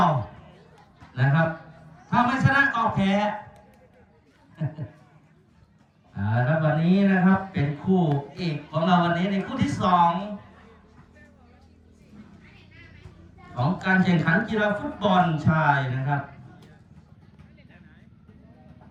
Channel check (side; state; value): both; identical; correlation 1.00